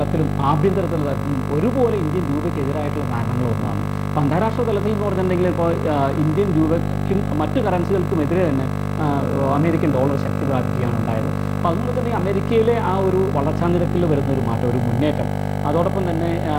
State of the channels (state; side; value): identical; both; correlation 1.00